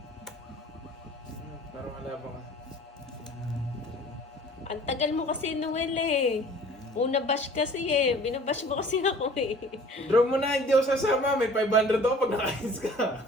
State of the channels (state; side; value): normal; both; correlation 0.48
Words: Parang malabang ka. Ang tagal mo kasi, Noel eh. Una bash kasi eh. Binabash mo kasi ako eh. Draw mo na, hindi ako sasama. May 500 ako pag nakahits ka.